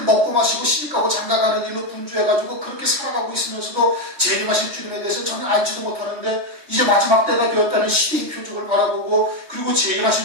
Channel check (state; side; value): late; left; 3.2 ms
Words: 먹고 마시고 시집가고 장가가는 일로 분주해가지고 그렇게 살아가고 있으면서도 재림하실 주님에 대해서 전혀 알지도 못하는데 이제 마지막 때가 되었다는 시대의 표적을 바라보고, 그리고